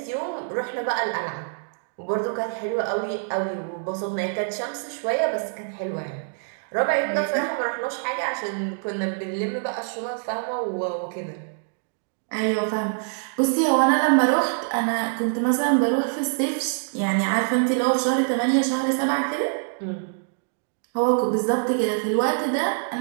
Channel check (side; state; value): left; silent; digital silence